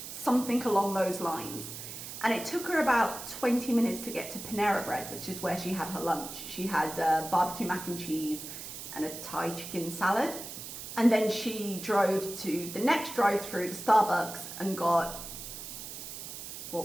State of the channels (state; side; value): noise; right; hiss, 10 dB below the sound